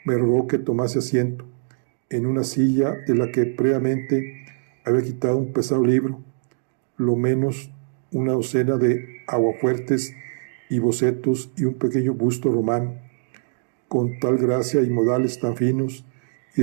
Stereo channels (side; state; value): left; silent; digital silence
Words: me rogó que tomase asiento en una silla de la que previamente había quitado un pesado libro, lo menos una docena de aguafuertes y bocetos y un pequeño busto romano, con tal gracia y modales tan finos y